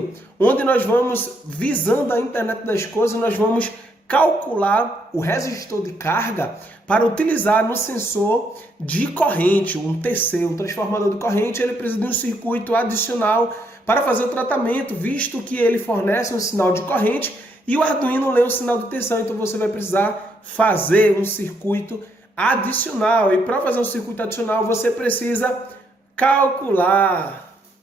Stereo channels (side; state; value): both; normal; correlation 0.74